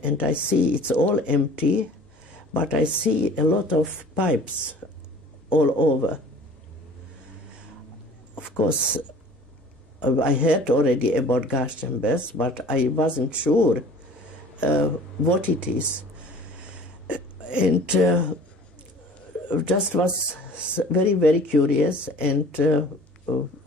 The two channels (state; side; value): normal; both; correlation 0.47